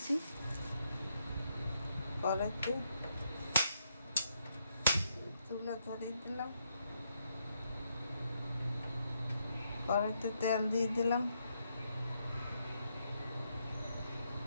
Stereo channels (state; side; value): inverted; both; correlation -0.77